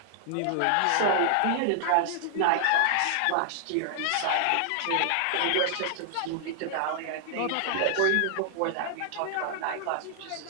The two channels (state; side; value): different; both; correlation -0.01